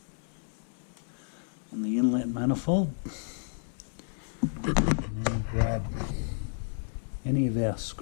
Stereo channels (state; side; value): silent; right; 57 dB below the other